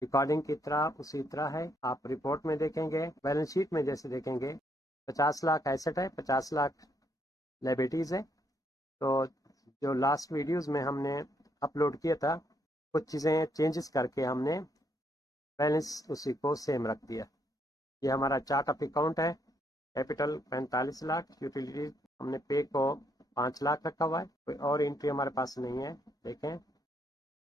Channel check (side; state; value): both; normal; correlation 0.73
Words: की तरह उसी तरह है, आप report में देखेंगे, बैलेंस शीट में जैसे देखेंगे 50 लाख एसेट है, 50 लाख लायबिलिटीज़ है। तो जो लास्ट वीडियोस में हमने अपलोड किया था, कुछ चीज़ें चेंजेस करके हमने बैलेंस उसी को सेम रख दिया। ये हमारा चार्ट ऑफ अकाउंट है। कैपिटल 45 लाख, यूटिलिटीज हमने पे को 5 लाख रखा हुआ है, कोई और एंट्री हमारे पास नहीं है। देखें,